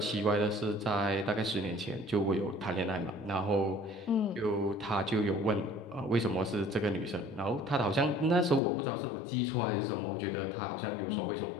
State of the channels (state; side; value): drops out; right; at 8.6 s